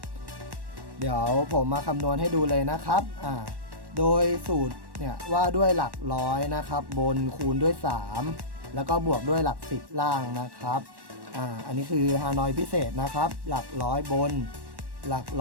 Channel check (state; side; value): late; left; 1.1 ms